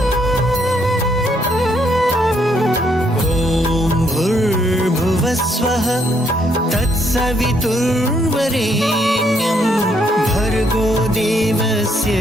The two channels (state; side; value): normal; both; correlation 0.72